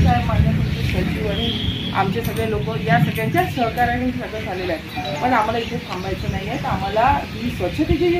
साहेब मान्य तुमचे सचिव आणि आमचे सगळे लोक या सगळ्यांच्या सहकार्याने सगळं झालेलं आहे. पण आम्हाला इथे थांबायचं नाही आहे. तर आम्हाला ही स्वच्छतेची जी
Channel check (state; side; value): identical; both; correlation 1.00